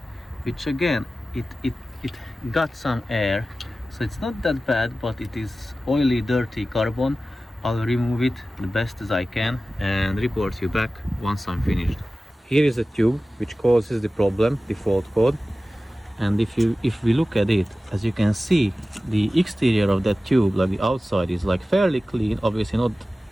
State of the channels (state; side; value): normal; both; correlation 0.95